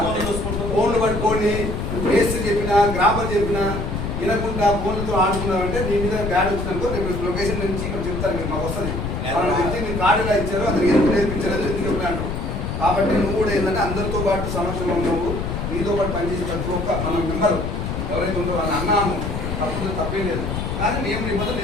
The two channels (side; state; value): left; noise; rumble, 3 dB below the sound